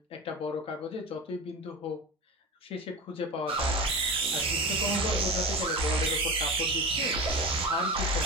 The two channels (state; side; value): normal; both; correlation 0.27